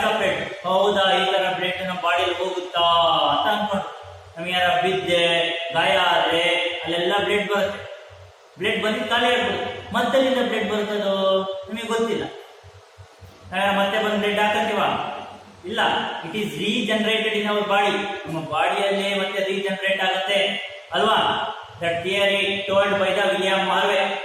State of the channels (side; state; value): both; identical; correlation 1.00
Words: ಹೌದಾ, ಈ ತರ ಬ್ಲಡ್ ನಮ್ಮ ಬಾಡಿಯಲ್ಲಿ ಹೋಗುತ್ತಾ ಅಂತ ಅನ್ಕೊಂಡು ನಮಗೆ ಯಾರ ಬಿದ್ದೆ ಗಾಯ ಆದ್ರೆ ಅಲ್ಲೆಲ್ಲ ಬ್ಲಡ್ ಬರುತ್ತೆ. ಬ್ಲಡ್ ಬಂದಿದ್ದು ಖಾಲಿ ಆಗ್ಬೋದು. ಮತ್ತೆಲ್ಲಿಂದ ಬ್ಲಡ್ ಬರುತ್ತದೋ ನಿಮಗೆ ಗೊತ್ತಿಲ್ಲ. ಮತ್ತೆ ಬಂದು ಬ್ಲಡ್ ಹಾಕತ್ತೀವ? ಇಲ್ಲ. It is regenerated in our body. ನಮ್ಮ ಬಾಡಿಯಲ್ಲೇ ಮತ್ತೆ ರೀಜನರೇಟ್ ಆಗುತ್ತೆ ಅಲ್ವಾ? That theory told by the William Harvey.